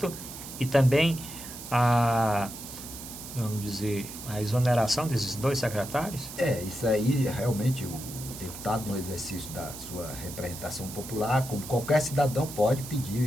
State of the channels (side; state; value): right; noise; hiss, 11 dB below the sound